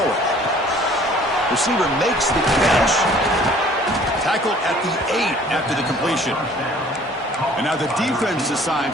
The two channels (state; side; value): normal; both; correlation 0.53